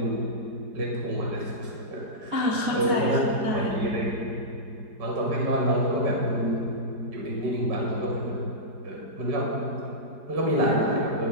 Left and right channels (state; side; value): late; left; 4.9 ms